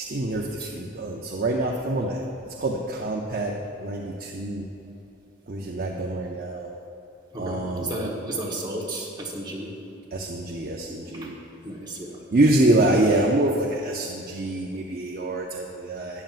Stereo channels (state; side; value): normal; both; correlation 0.45